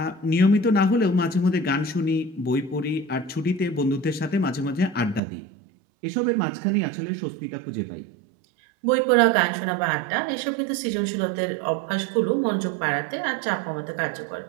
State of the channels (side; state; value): left; drops out; at 5.2 s